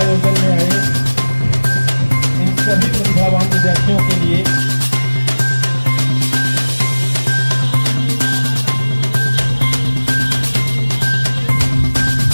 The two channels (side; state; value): both; inverted; correlation -1.00